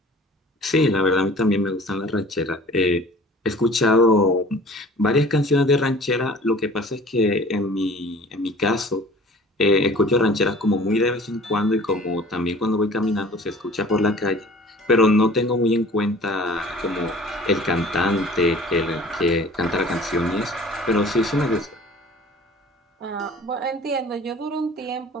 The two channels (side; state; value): both; normal; correlation 0.47